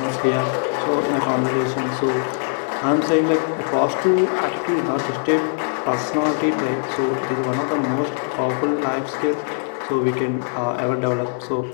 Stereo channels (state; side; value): silent; right; digital silence